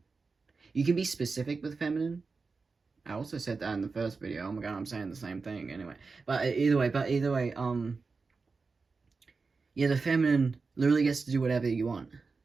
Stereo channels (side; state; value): left; quieter; 4.4 dB